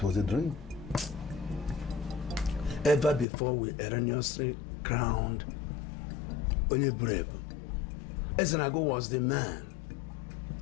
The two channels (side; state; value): right; drops out; at 3.2 s